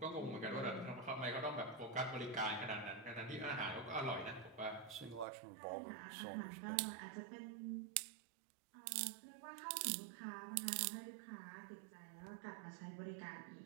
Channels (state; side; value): drops out; left; at 5.2 s